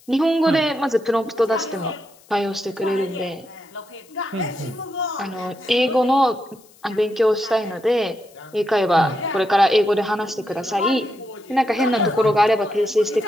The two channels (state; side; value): noise; left; hiss, 28 dB below the sound